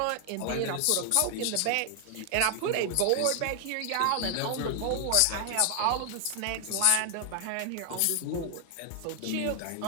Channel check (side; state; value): both; different; correlation 0.00